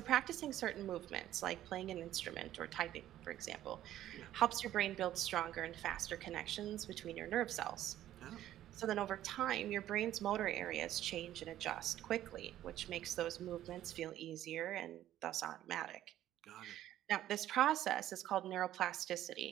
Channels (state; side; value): quieter; left; 12.8 dB